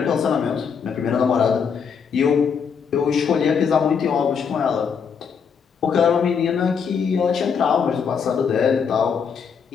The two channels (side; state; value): right; quieter; 6.5 dB